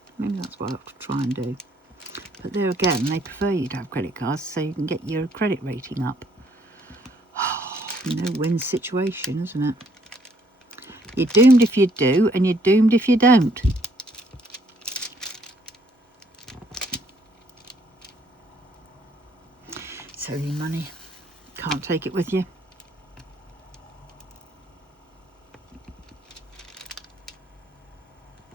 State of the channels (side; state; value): both; normal; correlation 0.67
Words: Maybe that's what I have to try and do. But there again, they prefer you to have credit cards so you can get your credit rating up. No-win situation, isn't it? You're doomed if you do, and you're doomed if you don't. So your money, can't take it with you.